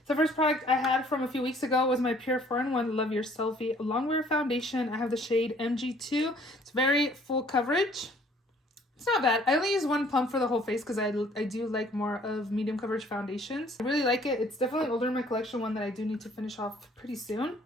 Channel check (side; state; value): both; normal; correlation 0.58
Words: the first product I had from a few weeks ago was my Pure 4-in-1 Love Your Selfie Longwear Foundation. I have the shade MG2. It's very full coverage. It's not bad. I only use one pump for the whole face because I do like more of medium coverage foundations. I really like it. It's definitely older in my collection, one that I do need to finish off pretty soon.